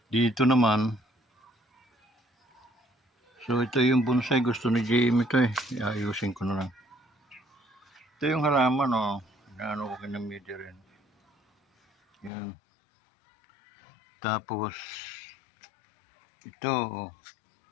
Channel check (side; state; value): right; drops out; at 12.3 s